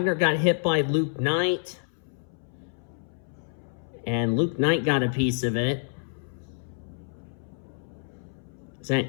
got hit by Luke Knight. And Luke Knight got a piece of it. Is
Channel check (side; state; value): right; silent; 59 dB below the other